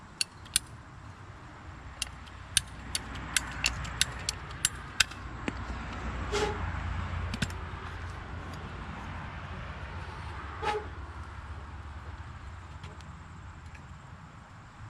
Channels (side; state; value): both; identical; correlation 1.00